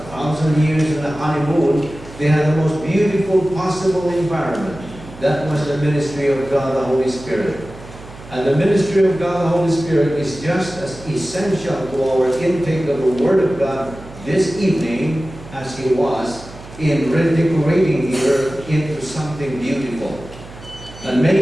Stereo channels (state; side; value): noise; right; hum, 17 dB below the sound